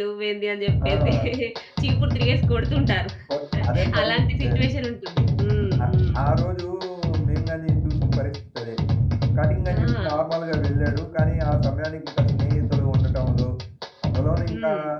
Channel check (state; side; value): identical; both; correlation 1.00